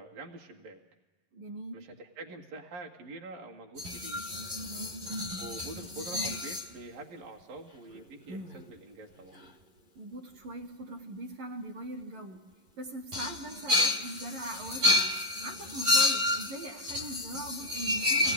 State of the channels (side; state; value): left; late; 11 ms